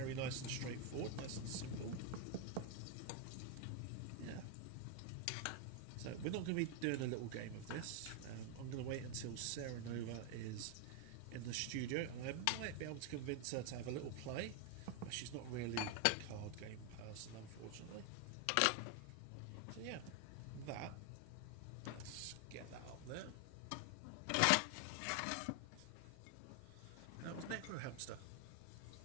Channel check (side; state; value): both; different; correlation 0.01